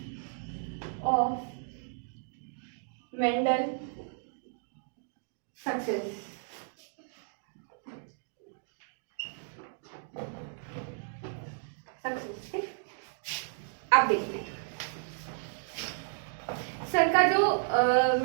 of Mendel success.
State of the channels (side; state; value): left; silent; digital silence